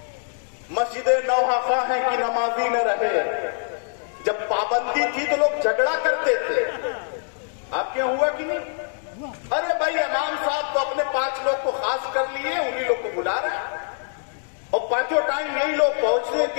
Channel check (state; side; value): silent; right; digital silence